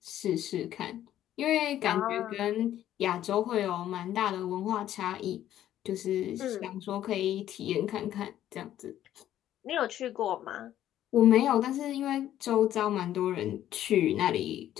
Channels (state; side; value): quieter; right; 12.0 dB